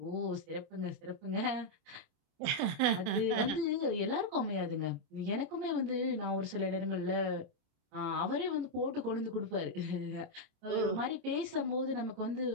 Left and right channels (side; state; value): left; late; 26 ms